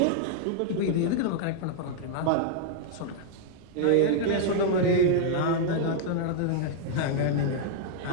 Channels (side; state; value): both; different; correlation -0.01